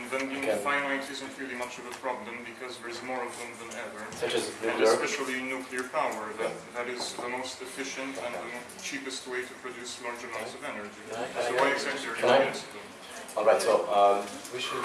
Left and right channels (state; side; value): identical; both; correlation 1.00